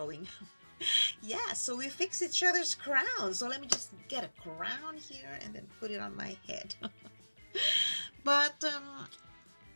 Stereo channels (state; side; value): inverted; both; correlation -1.00